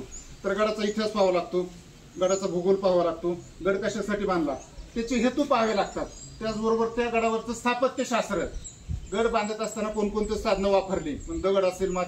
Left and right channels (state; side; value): identical; both; correlation 1.00